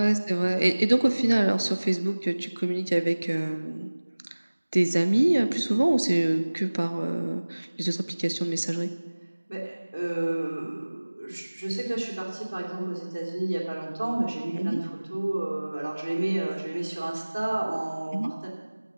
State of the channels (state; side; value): inverted; both; correlation -1.00